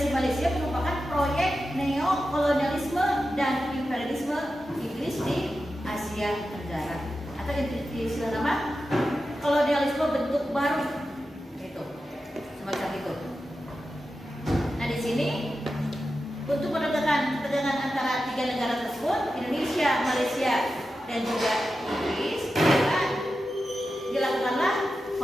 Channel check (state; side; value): normal; both; correlation 0.91